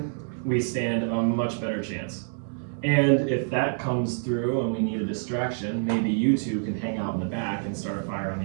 we stand a much better chance. And if that comes through and we need a distraction, maybe you two can hang out in the back and start a fire on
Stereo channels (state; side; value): silent; left; digital silence